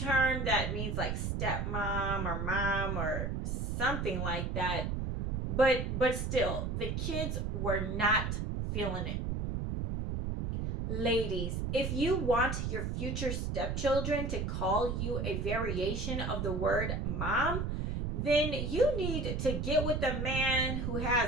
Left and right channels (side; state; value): right; noise; rumble, 1 dB below the sound